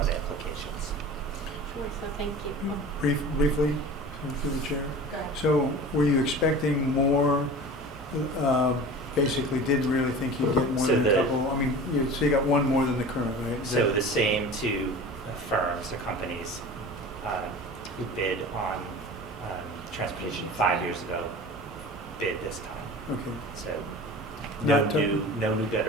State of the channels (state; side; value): normal; both; correlation 0.37